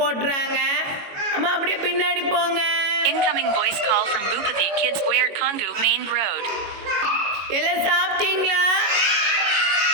அம்மா அப்படியே பின்னாடி போங்க. Incoming voice call from Bhupathi Kids Wear Kongu Main Road. எல்லாம் சாப்பிட்டீங்களா?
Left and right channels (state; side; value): late; left; 22 ms